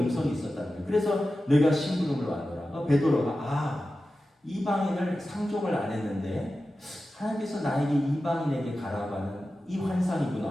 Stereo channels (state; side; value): normal; both; correlation 0.93